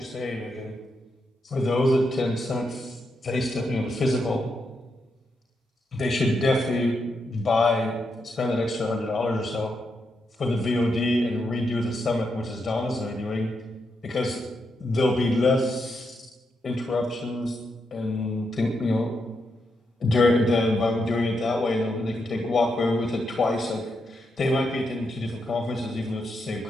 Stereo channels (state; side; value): normal; both; correlation 0.83